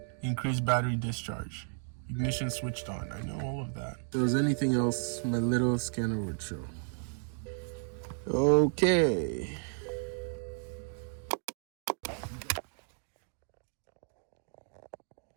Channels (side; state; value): left; silent; 56 dB below the other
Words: Increased battery discharge. Ignition switched on. I know all of that. If there was anything else, my little scanner would show. Okay.